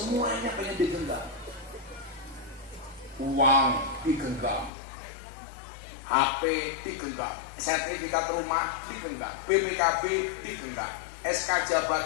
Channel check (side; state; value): right; drops out; at 4.7 s